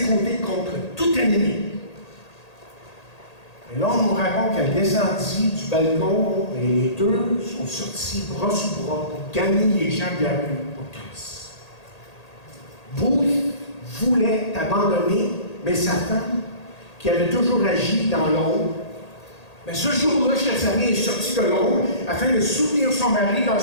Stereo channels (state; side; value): late; right; 1.8 ms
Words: côtés contre tout ennemi. Et là, on nous raconte qu'elle descendit du balcon et les deux sont sortis bras sous bras pour gagner les gens de la rue pour Christ. Booth voulait abandonner, mais sa femme, qui avait toujours agi dans l'ombre, mais ce jour-là, chers amis, est sortie de l'ombre afin de soutenir son mari